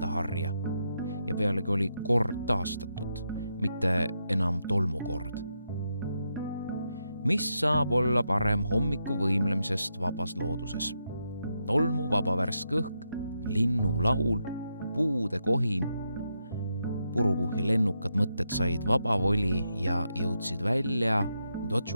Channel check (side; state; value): both; inverted; correlation -0.83